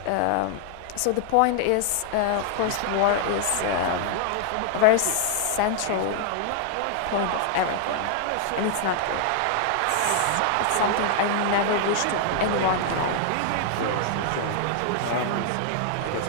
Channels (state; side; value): different; both; correlation 0.00